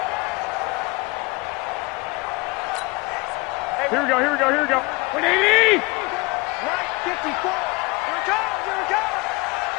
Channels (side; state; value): right; quieter; 25.0 dB